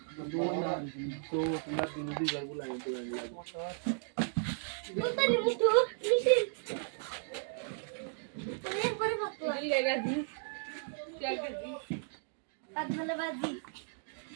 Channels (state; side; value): silent; left; digital silence